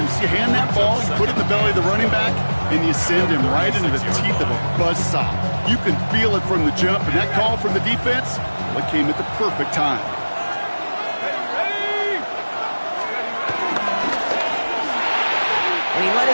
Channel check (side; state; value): both; inverted; correlation -1.00